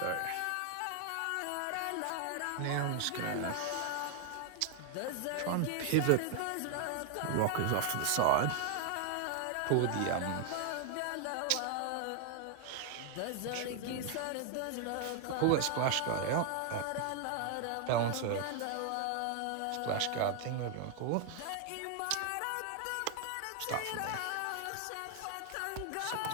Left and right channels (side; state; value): both; different; correlation 0.00